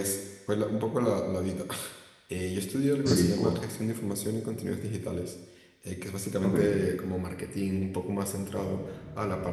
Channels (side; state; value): both; identical; correlation 1.00